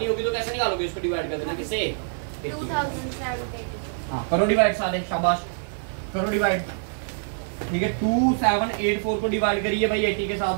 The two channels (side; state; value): left; silent; 62 dB below the other